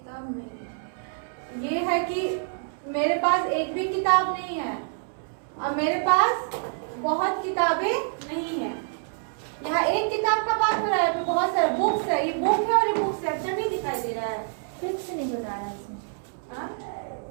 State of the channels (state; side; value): silent; left; 60 dB below the other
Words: नहीं। ये है कि मेरे पास एक भी किताब नहीं है और मेरे पास बहुत किताबें नहीं है। यहाँ एक किताब का बात हो रहा है, बहुत सारे बुक्स है। ये बुक है और ये बुक्स है, अच्छा नहीं दिखाई दे रहा है, फिक्स नहीं बता रहा है इसमें।